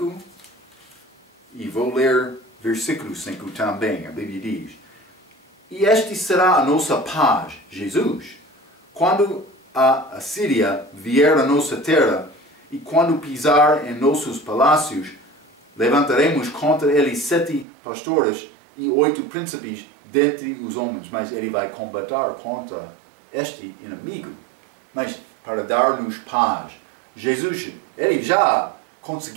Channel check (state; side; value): drops out; left; at 17.7 s